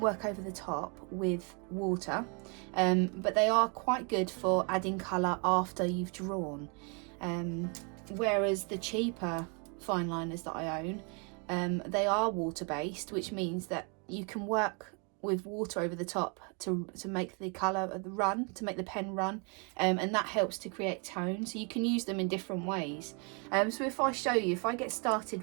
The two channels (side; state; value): left; quieter; 35.6 dB